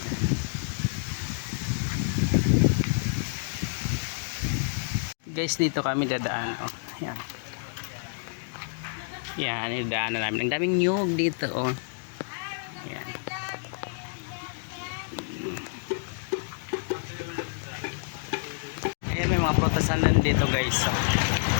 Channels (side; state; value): right; silent; digital silence